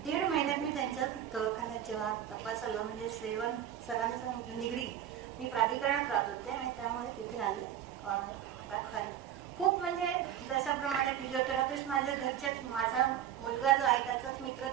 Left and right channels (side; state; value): left; quieter; 10.5 dB